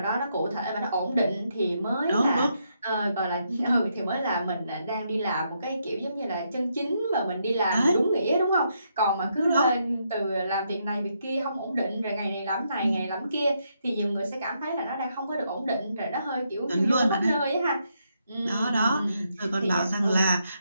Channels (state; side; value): inverted; both; correlation -0.78